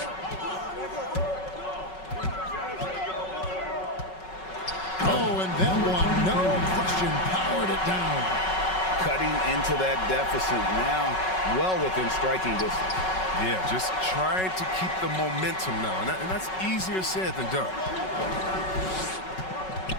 Powered it down. Cutting into that deficit now, well within striking distance. Yeah, just trying to keep the momentum now, and that's easier said than done.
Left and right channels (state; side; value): late; right; 5.4 ms